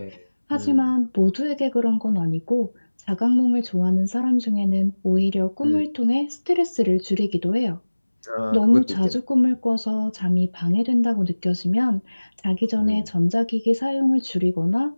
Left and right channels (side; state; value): both; inverted; correlation -1.00